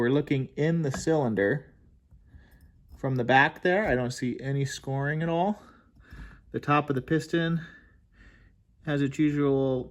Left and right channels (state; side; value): identical; both; correlation 1.00